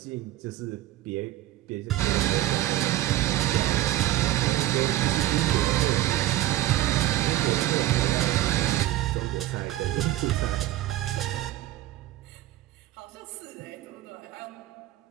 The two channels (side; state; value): left; quieter; 14.8 dB